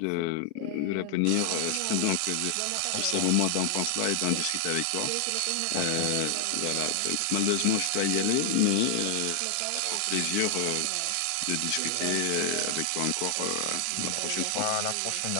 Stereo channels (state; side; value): different; both; correlation 0.00